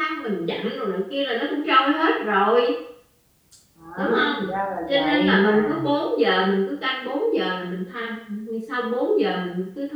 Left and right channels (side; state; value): both; identical; correlation 1.00